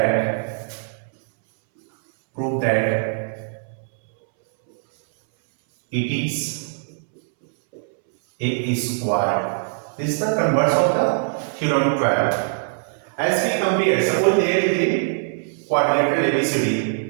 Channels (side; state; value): left; silent; 64 dB below the other